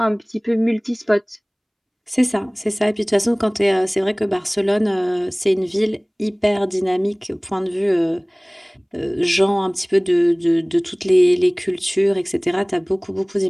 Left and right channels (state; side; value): identical; both; correlation 1.00